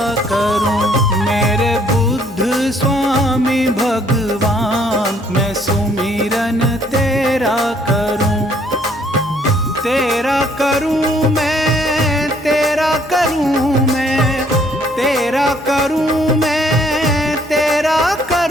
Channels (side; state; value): both; normal; correlation 0.64